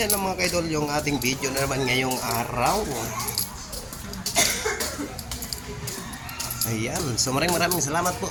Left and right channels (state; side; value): identical; both; correlation 1.00